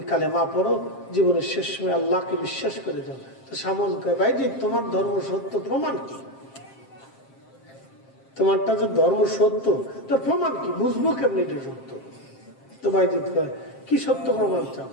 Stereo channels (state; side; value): late; right; 7.5 ms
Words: কালেমা পড়ো, জীবনের শেষ সময় আল্লাহকে বিশ্বাস করে দাও। তো শামন কয়, বাইজিদ তোমার ধর্ম সত্য, প্রমাণ কি? তোমারটা যে ধর্ম সত্য তোর প্রমাণ কি? বুঝবো কেমনি এটা সত্য? তো বাইজিদ কয়, কি সত্য প্রমাণ চাও?